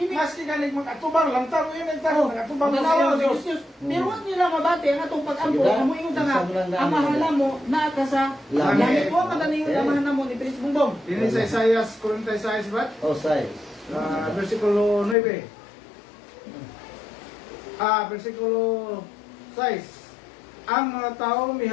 galing mag-atubang lang tao yun ang tao, mag-atubang lang Larawan tayo. sa Dios. Pero wag nila mabati ang atong pag-ampo. Diba? Amo ingon ta nga Isa mo lang ang mahala mo naa ka sa Langit. langit mo kadaning amahan namo ni Prince Bongbong. Dili sa Isaias 46, brad? Oh, say. Versikulo 9. Versikulo 6. Ang mga tao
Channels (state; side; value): drops out; right; at 15.2 s